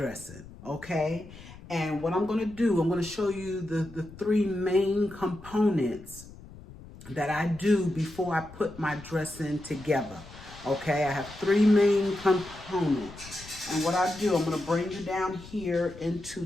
okay? And what I'm going to do, I'm going to show you the three main components that I do before I put my dressing together, okay? I have three main components. And what I do, I'm going to bring you down here into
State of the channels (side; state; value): left; noise; rumble, 18 dB below the sound